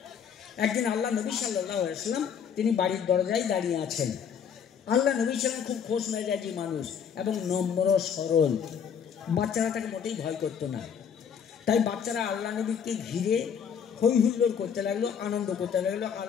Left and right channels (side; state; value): right; quieter; 7.5 dB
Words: একদিন আল্লাহ নবী সাল্লাল্লাহু আলাইহি ওয়াসাল্লাম তিনি বাড়ির দরজায় দাঁড়িয়ে আছেন। আল্লাহ নবী ছিলেন খুব খোশ মেজাজি মানুষ এবং নম্র সরল। বাচ্চারা তাকে মোটেই ভয় করতো না। তাই বাচ্চারা আল্লাহ নবীকে ঘিরে হই হুল্লোড় করতে লাগলো, আনন্দ করতে লাগলো।